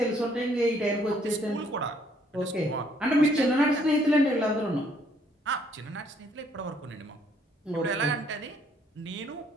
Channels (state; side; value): normal; both; correlation 0.66